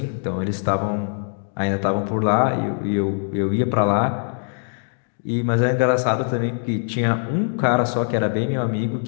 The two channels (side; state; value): right; silent; 58 dB below the other